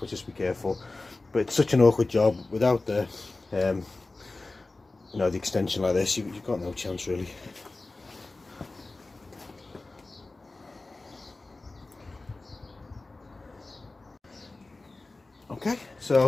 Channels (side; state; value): right; quieter; 3.3 dB